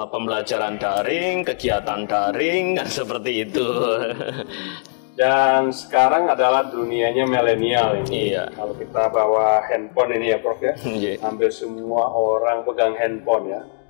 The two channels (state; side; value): silent; right; digital silence